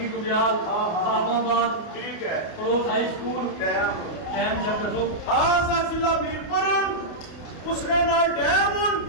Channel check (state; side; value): late; right; 29 ms